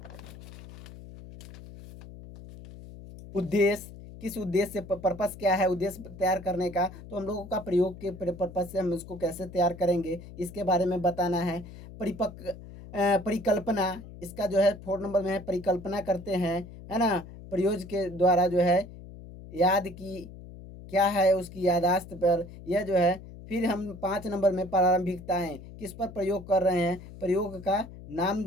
उद्देश्य, किस उद्देश्य से, पर्पस क्या है उद्देश्य तैयार करने का, तो हम लोगों का प्रयोग के पर्पस से हम इसको कैसे तैयार करेंगे इसके बारे में बताना है। परिकल्पना, इसका जो है 4 नंबर में है परिकल्पना करते हैं, है ना, प्रयोग के द्वारा जो है याद की क्या है उसकी यादाश्त पर, यह जो है। फिर हम 5 नंबर में प्रारंभिकताएं, किस पर प्रयोग कर रहे हैं, प्रयोग का नाम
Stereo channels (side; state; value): left; noise; hum, 15 dB below the sound